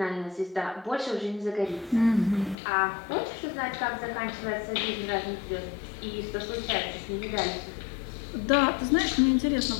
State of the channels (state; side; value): drops out; right; at 2.6 s